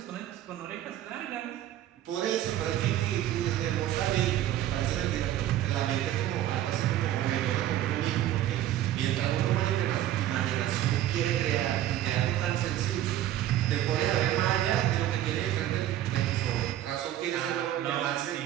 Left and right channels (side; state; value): left; quieter; 12.8 dB